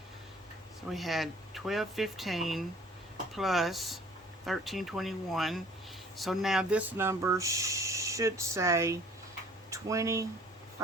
So we had $1,215 plus $1,321. So now this number should say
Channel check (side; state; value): both; normal; correlation 0.53